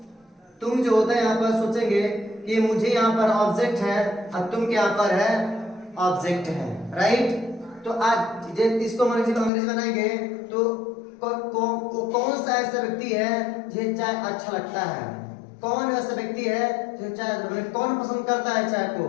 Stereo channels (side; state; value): right; drops out; at 9.5 s